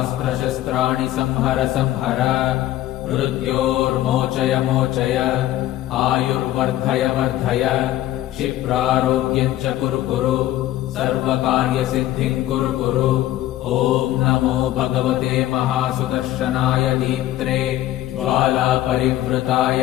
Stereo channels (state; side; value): quieter; right; 14.2 dB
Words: शस्त्राणि संहर संहर मृत्योर्मोचय मोचय आयुर्वर्धय वर्धय क्षिप्रारोग्यं च कुरु कुरु सर्वकार्यसिद्धिं कुरु कुरु ॐ नमो भगवते महासुदर्शनाय दीप्त्रे ज्वालापरिवृताय